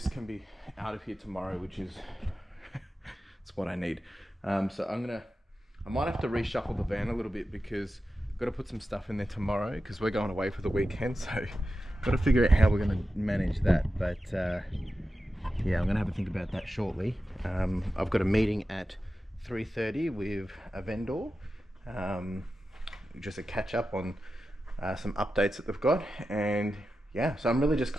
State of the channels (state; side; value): normal; both; correlation 0.92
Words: can be out of here tomorrow, which is it's what I need. So I might have to reshuffle the van a little bit because I've got to put some stuff in there tomorrow because we're going away for the weekend. So I've got to figure out how we're going to manage that. But yeah, I'm going to have a think about that shortly. I've got a meeting at 3:30 with a vendor, just a catch up on some updates that they've got. And yeah, so I'm really just